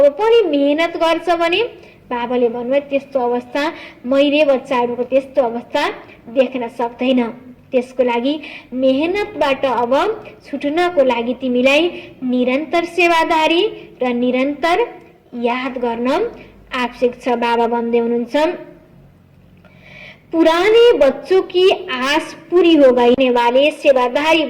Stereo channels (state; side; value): identical; both; correlation 1.00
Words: पनि मेहनत गर्छ भने बाबाले भन्नुभयो त्यस्तो अवस्था मैले बच्चाहरूको त्यस्तो अवस्था देख्न सक्दैन। त्यसको लागि मेहनतबाट अब छुट्नको लागि तिमीलाई निरन्तर सेवादारी र निरन्तर याद गर्न आवश्यक छ। बाबा भन्दै हुनुहुन्छ पुराने बच्चों की आस पूरी हो गई वाले सेवादारी